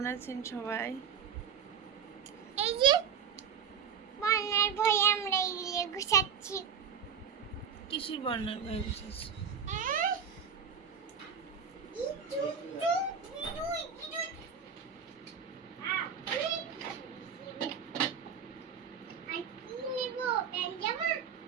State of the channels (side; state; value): left; quieter; 7.3 dB